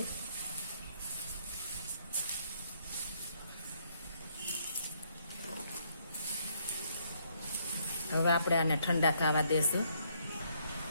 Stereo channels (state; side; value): inverted; both; correlation -0.70